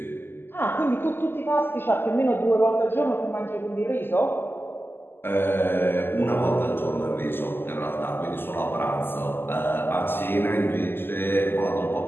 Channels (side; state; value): right; late; 0.10 ms